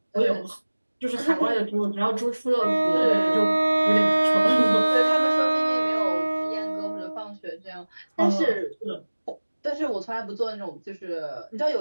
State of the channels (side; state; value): both; inverted; correlation -1.00